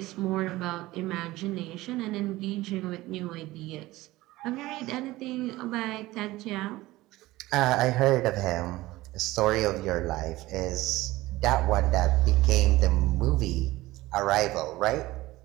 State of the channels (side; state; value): left; quieter; 18.3 dB